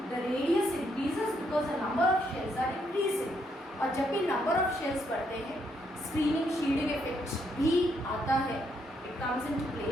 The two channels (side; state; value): both; normal; correlation 0.75